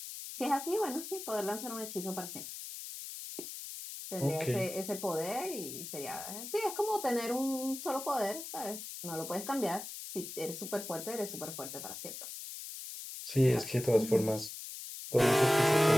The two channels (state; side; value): noise; left; hiss, 9 dB below the sound